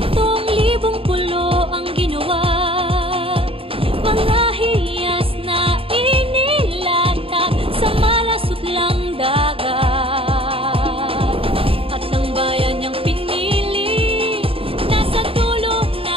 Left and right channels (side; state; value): left; late; 0.27 ms